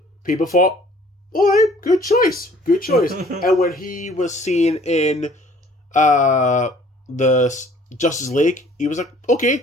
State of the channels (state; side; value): normal; both; correlation 0.55